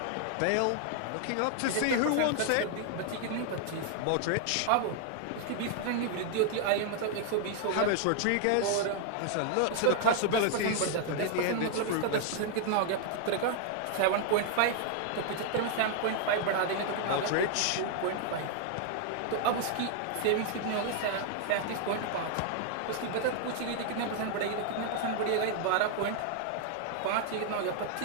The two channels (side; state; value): both; different; correlation 0.00